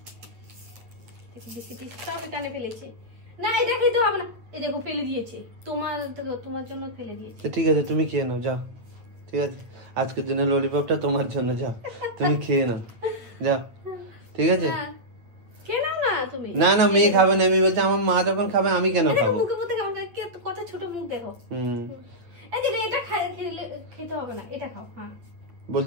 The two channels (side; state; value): left; late; 8.8 ms